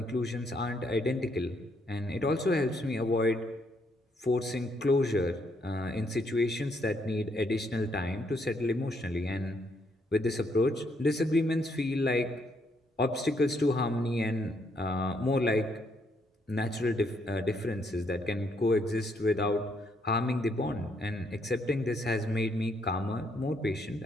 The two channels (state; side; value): normal; both; correlation 0.73